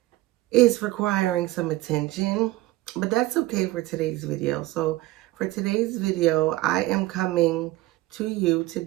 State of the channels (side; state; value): left; quieter; 18.1 dB